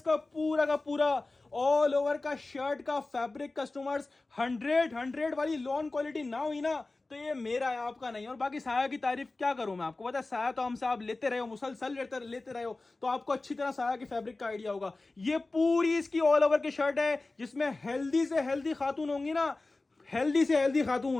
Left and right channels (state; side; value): quieter; right; 3.3 dB